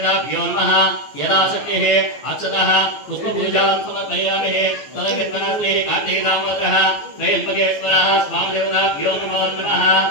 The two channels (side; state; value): right; late; 14 ms